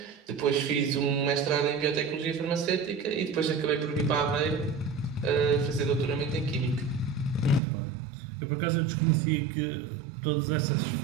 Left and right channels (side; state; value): left; drops out; at 7.6 s